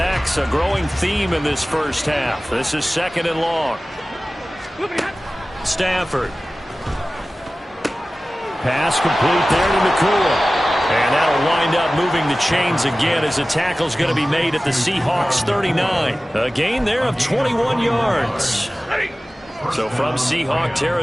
a growing theme in this first half. This is 2nd and long. Stafford. Pass complete there to Nacua. And that'll wind up moving the chains again as the tackle's going to be made at the Seahawks 39. A gain there of 21 yards. So from Seahawk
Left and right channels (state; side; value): normal; both; correlation 0.97